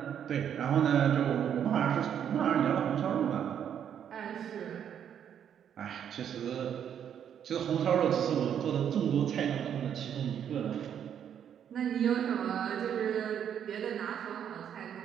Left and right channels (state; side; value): quieter; left; 8.9 dB